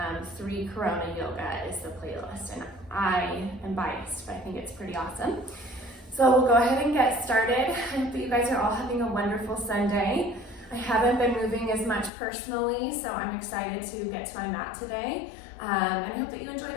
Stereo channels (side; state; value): right; drops out; at 12.1 s